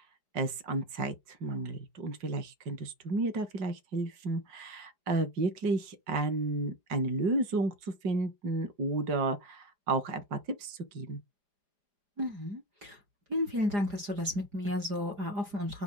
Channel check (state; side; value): late; left; 4.9 ms